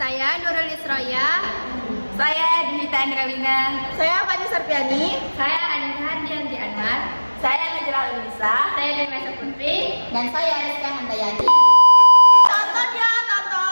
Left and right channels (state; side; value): inverted; both; correlation -1.00